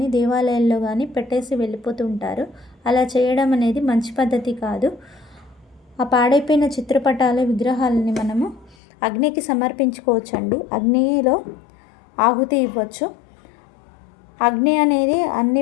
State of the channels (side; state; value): right; drops out; at 8.8 s